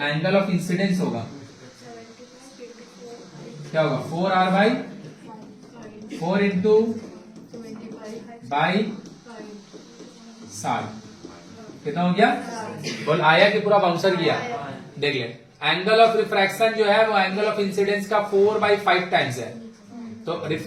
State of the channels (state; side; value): identical; both; correlation 1.00